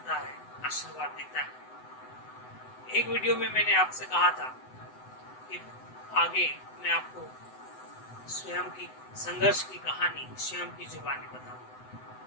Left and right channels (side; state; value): right; late; 7.9 ms